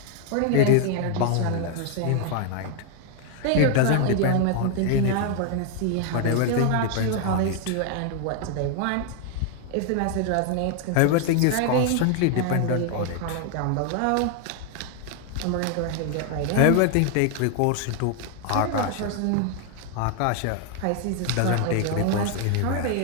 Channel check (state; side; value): different; both; correlation 0.00